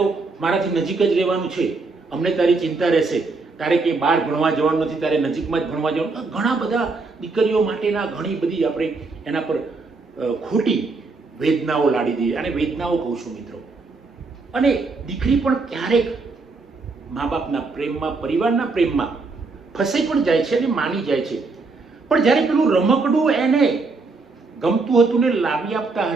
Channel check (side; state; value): left; quieter; 3.9 dB